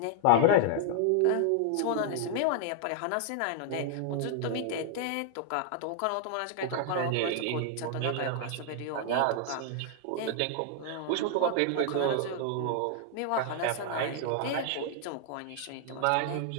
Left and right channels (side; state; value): both; different; correlation 0.00